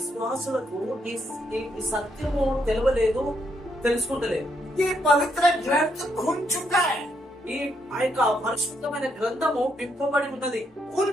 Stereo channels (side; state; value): both; normal; correlation 0.76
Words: ఈ సత్యము తెలియలేదు, తెలుసుకుంటలేదు. ఈ పవిత్ర గ్రంథ खुल चुका है. ఈ యొక్క పరిశుద్ధమైన గ్రంథము విప్పబడి ఉన్నది. खुल